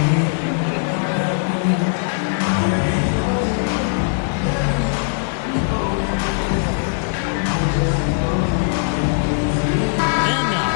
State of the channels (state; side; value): silent; right; digital silence